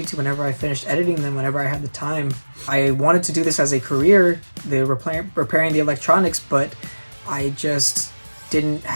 whenever I finished editing them, whenever I had the time. I wanted to do this as a career, repairing the electronics, but I just didn't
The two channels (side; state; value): both; inverted; correlation -1.00